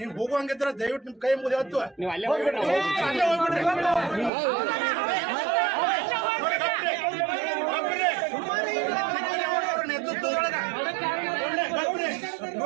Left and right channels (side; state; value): left; drops out; at 4.3 s